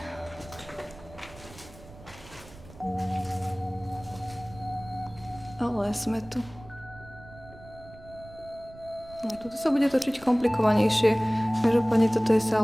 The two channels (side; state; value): right; noise; rumble, 20 dB below the sound